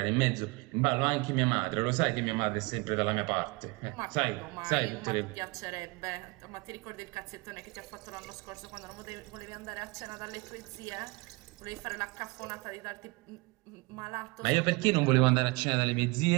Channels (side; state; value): left; quieter; 26.3 dB